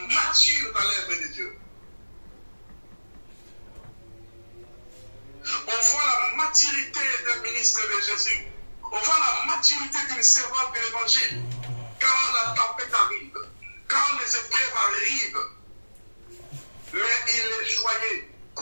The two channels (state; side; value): inverted; both; correlation -1.00